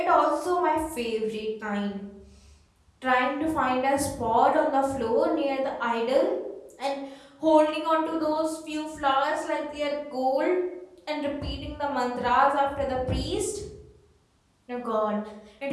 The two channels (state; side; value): identical; both; correlation 1.00